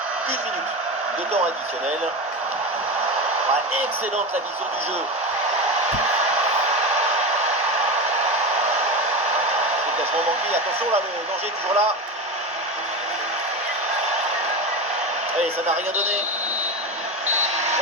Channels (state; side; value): normal; both; correlation 0.21